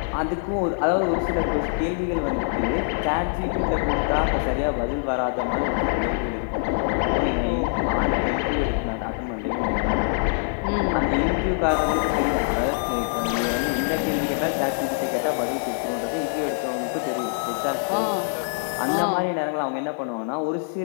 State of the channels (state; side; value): silent; right; digital silence